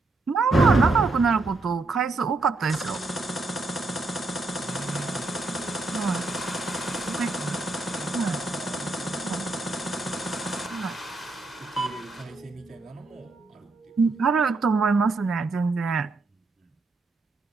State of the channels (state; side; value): quieter; left; 3.4 dB